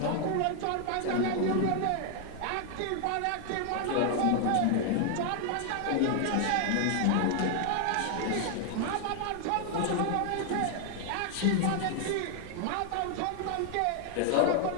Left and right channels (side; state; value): both; different; correlation 0.00